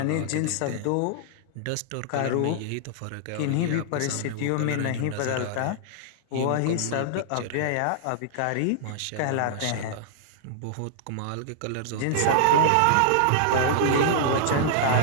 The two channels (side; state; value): both; different; correlation -0.01